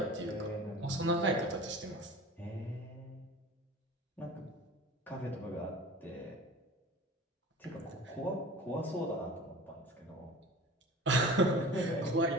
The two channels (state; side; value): normal; both; correlation 0.39